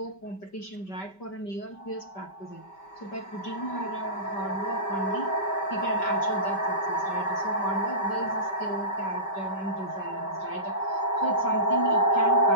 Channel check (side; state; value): right; late; 5.2 ms